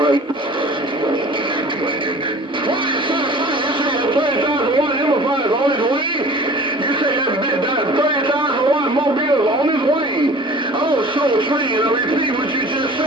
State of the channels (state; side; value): normal; both; correlation 0.45